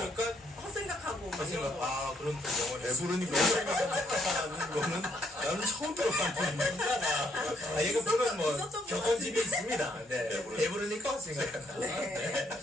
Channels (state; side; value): normal; both; correlation 0.71